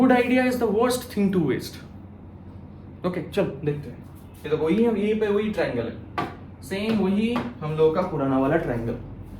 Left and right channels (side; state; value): both; identical; correlation 1.00